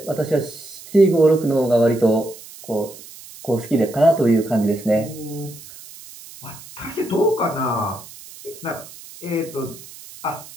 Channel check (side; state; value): right; noise; hiss, 18 dB below the sound